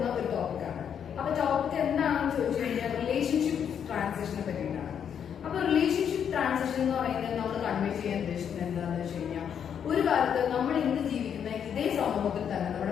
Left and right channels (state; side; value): quieter; right; 8.2 dB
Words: ഒരു ടോപ്പിക്കാണ്. അപ്പൊ ടോപ്പിക് എന്താണെന്ന് ചോദിച്ചു കഴിഞ്ഞാൽ റിലേഷൻഷിപ്പ് ട്രാൻസിഷനെ പറ്റിയിട്ടാണ്. അപ്പൊ റിലേഷൻഷിപ്പ് ട്രാൻസിഷൻ എന്ന് പറയുന്നത് നമ്മൾ കൺവേ ചെയ്യാൻ ഉദ്ദേശിക്കുന്നത് എന്താണെന്ന് വെച്ച് കഴിഞ്ഞാൽ, ഒരു കാലത്ത് നമ്മൾ ഇന്ന് ജീവിക്കുന്ന ഇതേ സമൂഹത്തിൽ തന്നെ